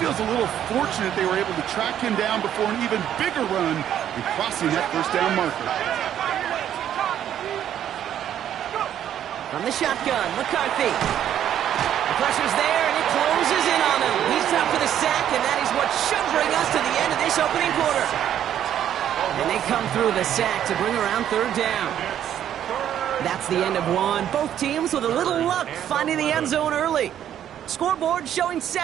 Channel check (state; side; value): quieter; left; 10.4 dB